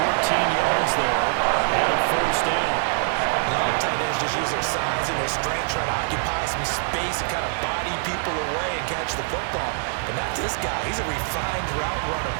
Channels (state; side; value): silent; left; digital silence